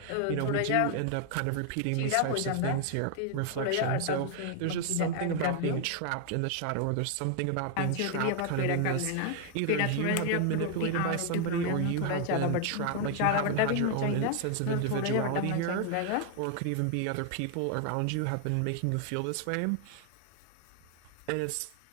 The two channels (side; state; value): both; different; correlation 0.00